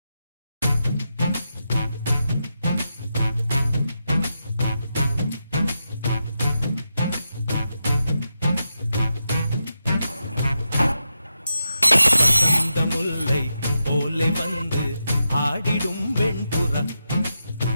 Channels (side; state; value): both; inverted; correlation -0.87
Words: முல்லை போலே வந்து ஆடிடும் வெண்புறா